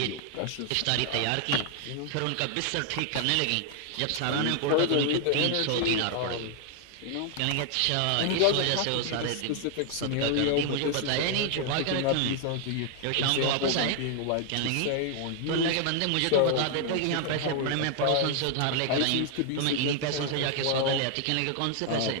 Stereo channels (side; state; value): both; different; correlation 0.00